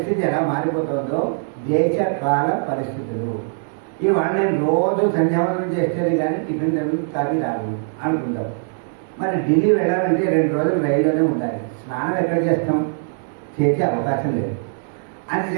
ఎలా మారిపోతుందో దేశకాల పరిస్థితులు. ఇవాళ నేను రోజు సంధ్యావందనం చేస్తేనే కానీ టిఫిన్ కాఫీ రాను అనుకుంటాం. మరి ఢిల్లీ వెళ్ళాలంటే 2 రోజులు రైల్లోనే ఉండాలి. స్నానం ఎక్కడ చేస్తాం, చేసే అవకాశం లేదు.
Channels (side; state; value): left; silent; digital silence